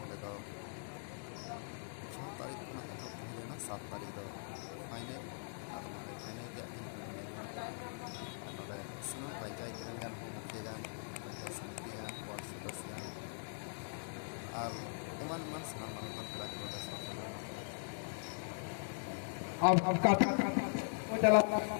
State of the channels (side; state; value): right; silent; digital silence